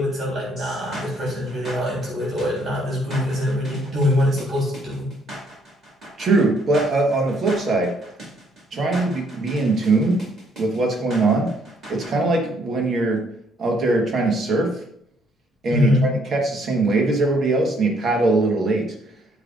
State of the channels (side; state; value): both; normal; correlation 0.67